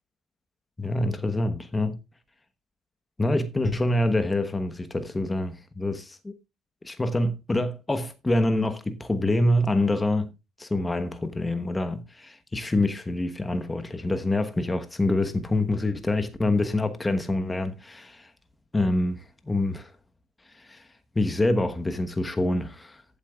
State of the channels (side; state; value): both; normal; correlation 0.91